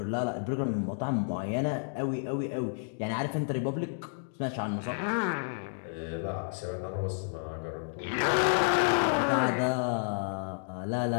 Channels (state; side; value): silent; right; digital silence